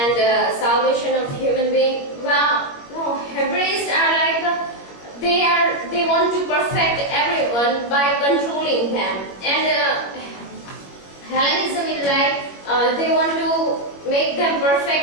salvation of human being. Well, no, Hebraists are like, they want to perfect everyone by controlling them. And Hellenism is like, they want to make them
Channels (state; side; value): late; right; 21 ms